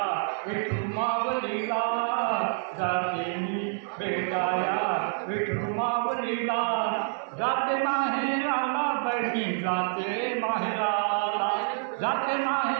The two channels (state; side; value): silent; left; 60 dB below the other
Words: विठुमावळीला जाते मी भेटाया विठुमावळीला जाते माहेराला बहिणी जाते माहेराला जाते